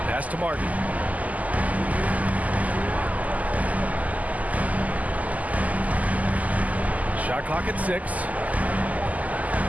Pass to Martin. Shot clock at 6.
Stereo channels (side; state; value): left; late; 0.076 ms